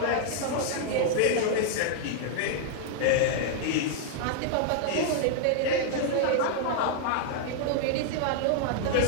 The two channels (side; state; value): both; different; correlation 0.00